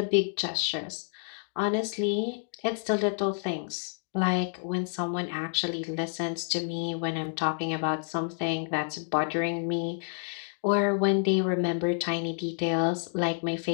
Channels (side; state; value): right; silent; digital silence